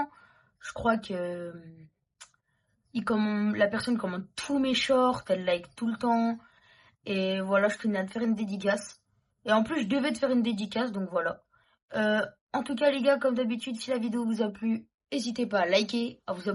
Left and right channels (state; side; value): identical; both; correlation 1.00